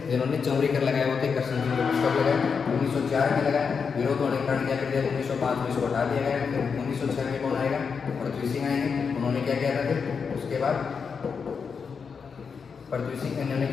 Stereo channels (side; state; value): right; quieter; 5.9 dB